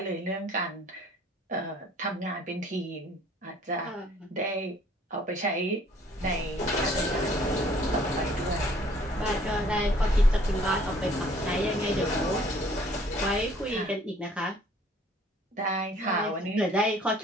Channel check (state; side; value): normal; both; correlation 0.57